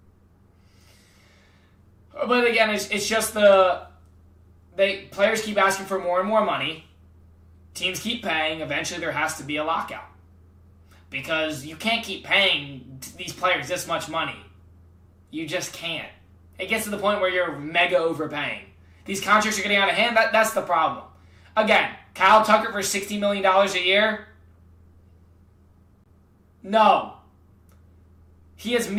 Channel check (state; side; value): identical; both; correlation 1.00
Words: But again, it's just players keep asking for more and more money. Teams keep paying. Eventually, there has to be a lockout. Because you can't keep paying these players this much money. You just can't. It gets to the point where you're mega overpaying. These contracts are getting out of hand. That's the problem. Again, Kyle Tucker for $60 million a year? No. He has